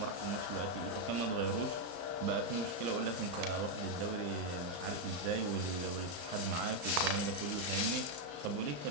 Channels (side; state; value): left; late; 35 ms